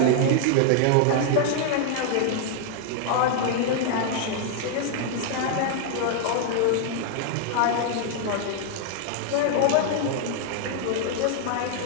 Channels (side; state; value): both; different; correlation 0.00